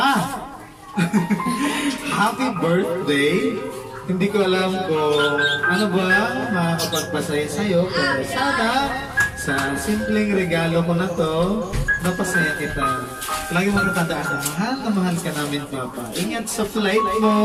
Happy birthday! Hindi ko alam kung ano ba makakapagpasaya sa'yo, pero sana sa simpleng regalo ko na to, napasaya kita. Lagi mo natandaan na mahal ka namin, Papa. Ingat sa flight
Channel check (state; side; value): identical; both; correlation 1.00